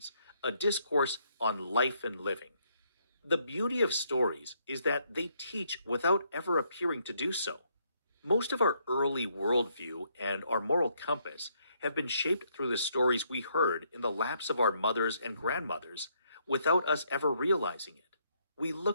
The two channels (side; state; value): both; inverted; correlation -0.72